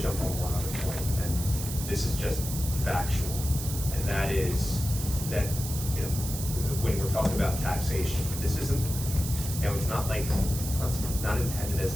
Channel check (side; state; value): right; noise; hiss, 7 dB below the sound